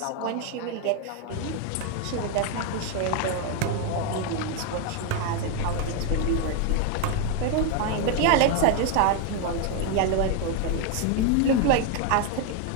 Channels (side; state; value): both; different; correlation 0.01